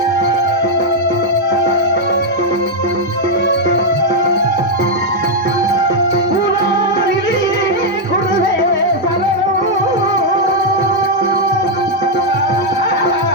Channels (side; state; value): both; normal; correlation -0.01